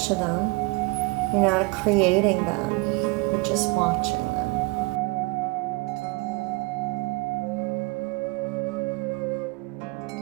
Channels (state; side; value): quieter; left; 26.9 dB